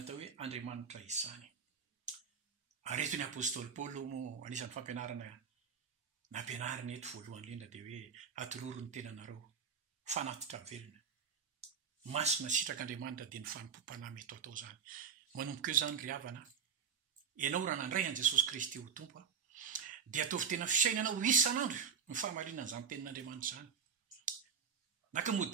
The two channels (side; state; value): left; quieter; 6.6 dB